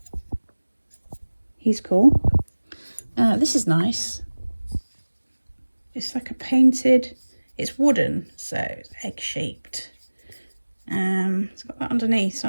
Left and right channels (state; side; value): inverted; both; correlation -1.00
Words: He's cool. This is nice. It's like a painted, it's wooden, so it's egg-shaped. It's got that underneath, so